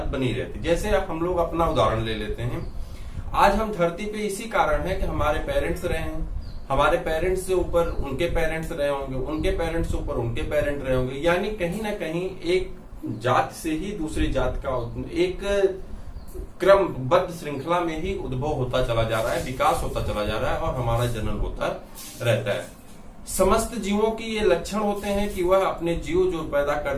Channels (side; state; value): both; identical; correlation 1.00